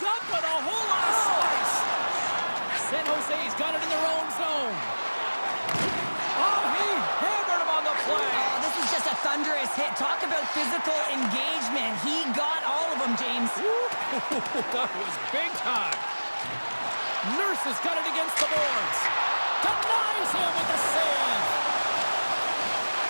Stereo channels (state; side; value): inverted; both; correlation -1.00